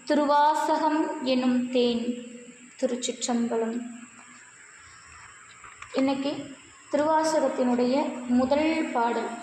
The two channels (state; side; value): identical; both; correlation 1.00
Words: திருவாசகம் எனும் தேன். திருச்சிற்றம்பலம். இன்னைக்கு திருவாசகத்தினுடைய முதல் பாடல்